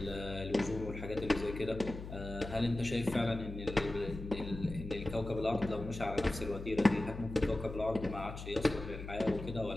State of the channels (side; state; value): left; noise; hum, 10 dB below the sound